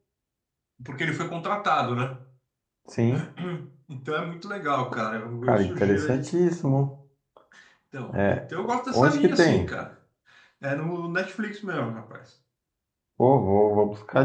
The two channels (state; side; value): identical; both; correlation 1.00